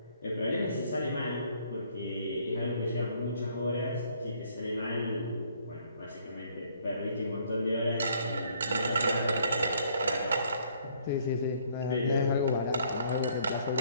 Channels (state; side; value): inverted; both; correlation -0.64